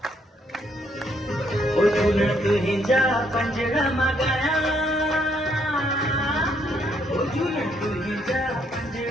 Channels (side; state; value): both; normal; correlation 0.71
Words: ओ झूलण तुंहिंजा पंजड़ा मगाया ओ झूलण तुंहिंजा